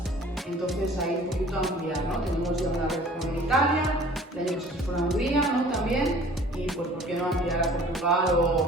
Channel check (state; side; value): normal; both; correlation 0.49